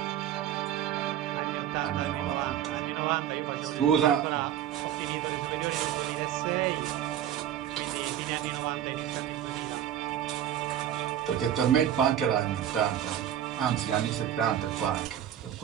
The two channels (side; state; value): left; quieter; 10.7 dB